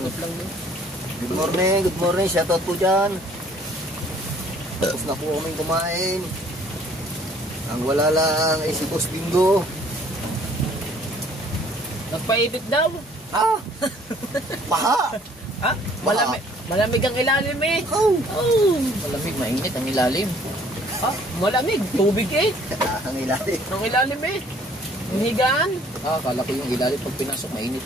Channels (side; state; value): both; normal; correlation 0.58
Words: Ikot lang doon. Good morning, shoutout po dyan. Tapos na po kaming kumain. Ang wala lang ay si Boss Bingo. Nagpaibit daw. Ha? Paha! Ha? Malamig ang ilalim eh. Oh! Oh. Malamig, mainit ang ilalim. Ha? Malamig. Tubig eh. Ang ilalim. Ang ilalim eh. Ang higaan. Akala ko yung ilalim pag pinasok, mainit